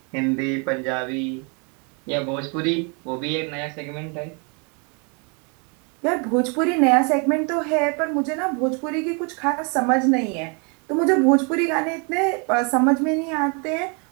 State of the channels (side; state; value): left; quieter; 35.0 dB